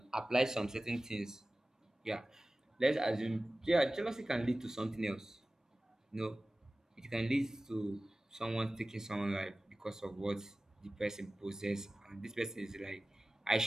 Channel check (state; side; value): normal; both; correlation 0.96